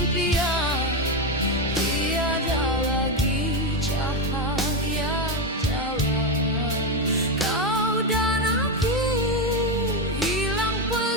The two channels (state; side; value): normal; both; correlation 0.10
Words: tiada lagi cahaya jalan. Kau dan aku hilang